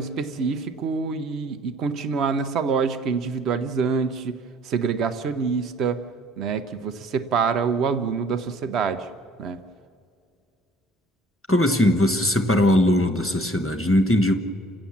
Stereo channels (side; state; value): both; normal; correlation 0.56